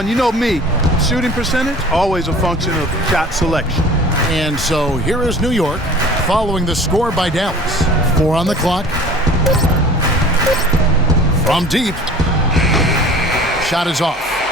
you know me, shooting percentage, always a function of shot selection. And so here is New York following the score by Dallas. 4 on the clock. From deep. Shot is off.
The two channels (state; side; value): normal; both; correlation 0.44